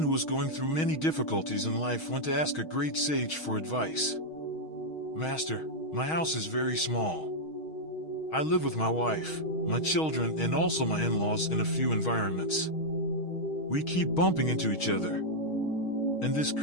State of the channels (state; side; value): late; right; 6.3 ms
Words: who was going through many difficulties in life went to ask a great sage for advice. "Master, my house is very small. I live with my wife, my children, and also my in-laws in a few environments. We keep bumping into each other, and this